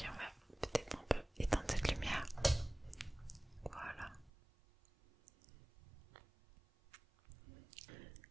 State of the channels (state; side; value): drops out; left; at 4.3 s